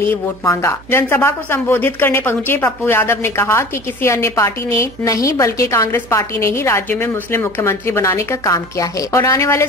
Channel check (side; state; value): right; noise; hum, 22 dB below the sound